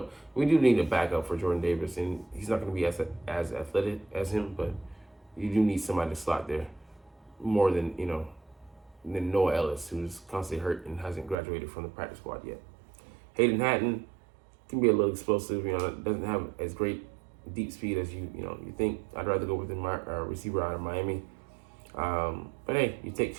We do need a backup for Jordan Davis, and he's not going to be as athletic as him, but you do need somebody to slot there more than Noah Ellis, who's constantly hurt and hasn't graduated from the practice squad yet. Hayden Hatton can be a little explosive, doesn't have as great deep speed as you think. I'd rather go with the receiver out of Miami. But hey, you take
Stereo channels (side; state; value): left; drops out; at 11.4 s